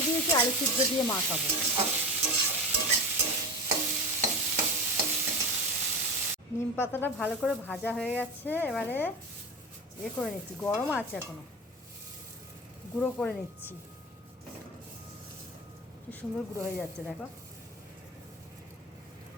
দিয়েছি, আলু সিদ্ধ দিয়ে মাখাবো। নিম পাতাটা ভালো করে ভাজা হয়ে গেছে, এবারে করে নিচ্ছি, গরম আছে এখনো, গুঁড়ো করে নিচ্ছি। কি সুন্দর গুঁড়ো হয়ে যাচ্ছে দেখো।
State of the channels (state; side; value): normal; both; correlation 0.27